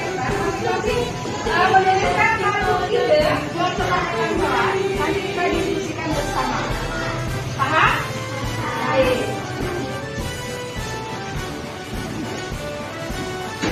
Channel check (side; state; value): both; identical; correlation 1.00